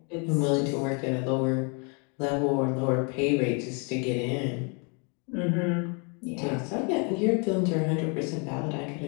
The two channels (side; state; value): right; quieter; 35.5 dB